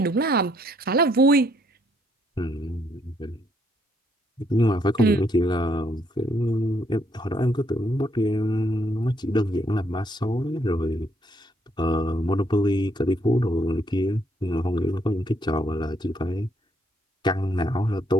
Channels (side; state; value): both; normal; correlation 0.70